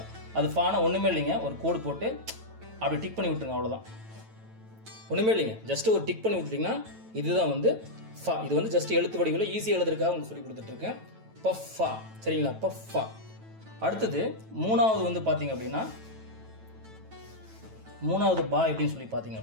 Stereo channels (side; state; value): left; late; 9.1 ms